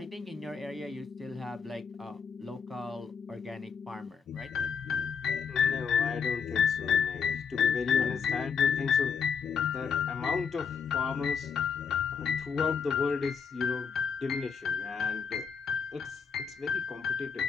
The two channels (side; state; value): right; quieter; 6.3 dB